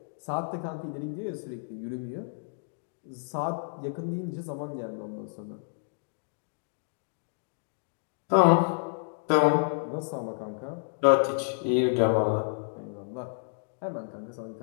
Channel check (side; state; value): right; silent; digital silence